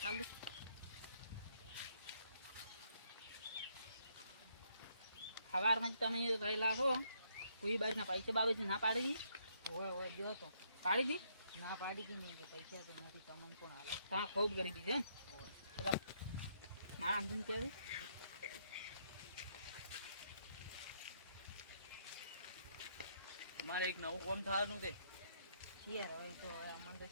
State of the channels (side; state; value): both; inverted; correlation -0.72